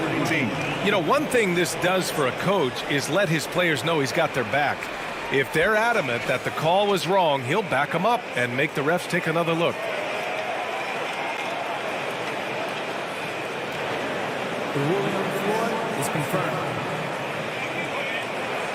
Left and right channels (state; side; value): identical; both; correlation 1.00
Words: 19. You know, one thing this does for a coach is let his players know he's got their back. If they're adamant that the call was wrong, he'll back them up and make the refs take another look. The ruling on the floor is confirmed.